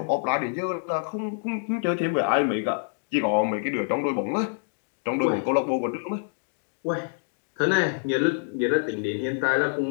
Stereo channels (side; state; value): right; silent; digital silence